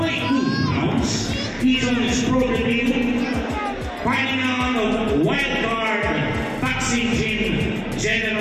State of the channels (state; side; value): identical; both; correlation 1.00